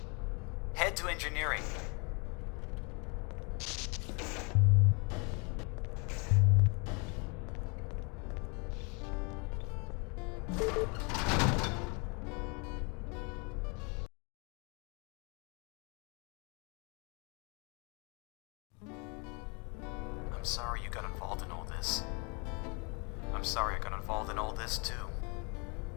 Head to engineering. I'm sorry you got involved in all this. I'm sorry I got involved in all this too.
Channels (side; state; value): right; quieter; 32.6 dB